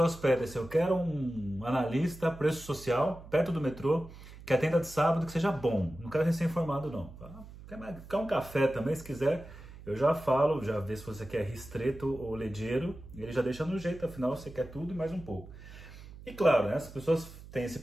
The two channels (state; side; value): noise; right; hum, 16 dB below the sound